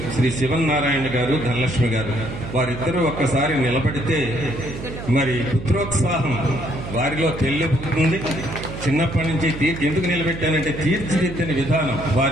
శ్రీ శివనారాయణ గారు, ధనలక్ష్మి గారు, వారిద్దరూ ఒక్కసారి నిలబడితే మరి పుత్రోత్సాహం వారిలో తెల్లిపోతుంది. చిన్నప్పటి నుంచి ఎందుకు నిలబెట్టానంటే తీర్చిదిద్దిన విధానం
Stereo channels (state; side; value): noise; right; hum, 10 dB below the sound